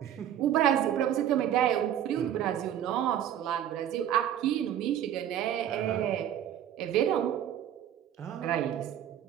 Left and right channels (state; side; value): quieter; left; 10.6 dB